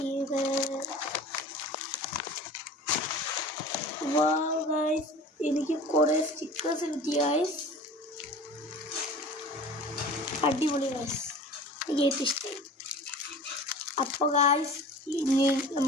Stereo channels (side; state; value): both; normal; correlation 0.40